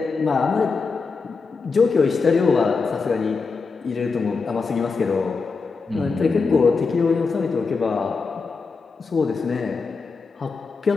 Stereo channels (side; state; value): right; quieter; 4.6 dB